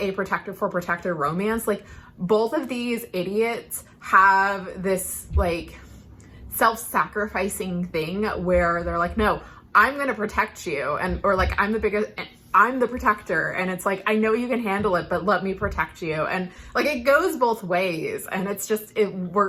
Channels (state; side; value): identical; both; correlation 1.00